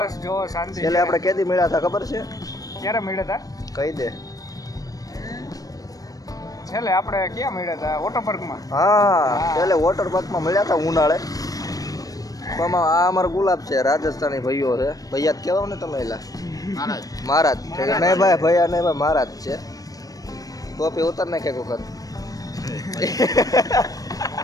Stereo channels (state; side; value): late; right; 0.18 ms